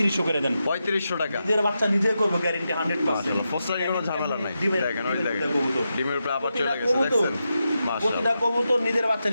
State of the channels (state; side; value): inverted; both; correlation -0.88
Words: করে দেন। 3500 টাকা। নিজের বাচ্চা নিজে করবো, গ্যারেন্টি 100%। মাশাআল্লাহ পোস্টারে কোনো ঝামেলা নাই। ডিমের- দেখেন ওই দেখেন কবুতর। ডিমের উপরে আবার চলে গেছে প্রতিটা দেখছেন প্রতিটা মাশাআল্লাহ। কবুতর নিজের বাচ্চা